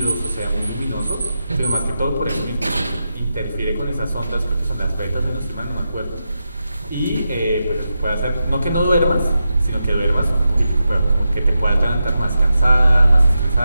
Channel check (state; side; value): inverted; both; correlation -0.88